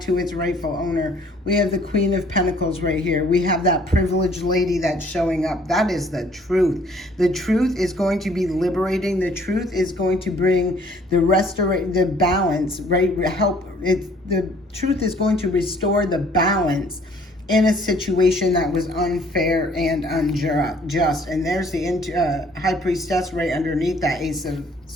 its rightful owner. We have the Queen of Pentacles right here. We have that privileged lady that's showing up. That is the truth. The truth is going to be liberating. The truth is going to bring the balance, right? The truth is going to restore the balance in a situation that was unfair and unjust. And there's the High Priestess right underneath that Ace of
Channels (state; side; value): normal; both; correlation 0.58